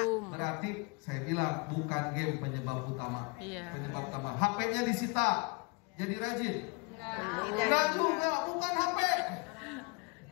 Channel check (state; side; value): quieter; right; 30.4 dB